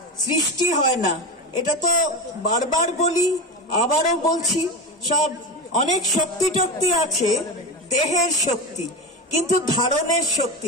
সৃষ্টি হয় না। এটা তো বারবার বলি, আবারও বলছি, সব অনেক শক্তি টক্তি আছে, দেহের শক্তি, কিন্তু ধারণের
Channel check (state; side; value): normal; both; correlation 0.21